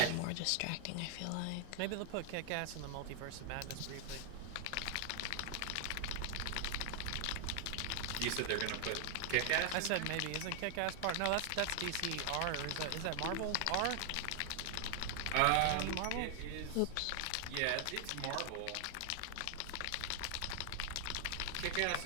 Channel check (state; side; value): different; both; correlation 0.00